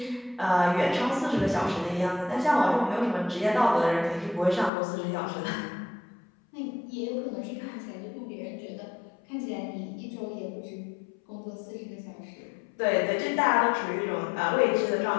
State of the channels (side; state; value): right; drops out; at 4.7 s